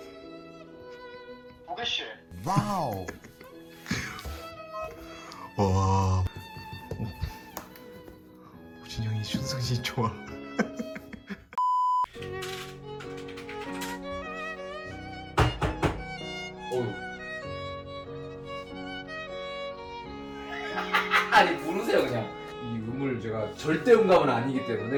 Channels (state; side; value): identical; both; correlation 1.00